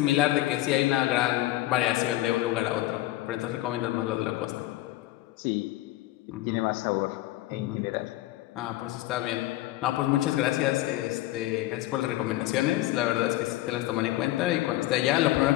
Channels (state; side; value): quieter; right; 16.6 dB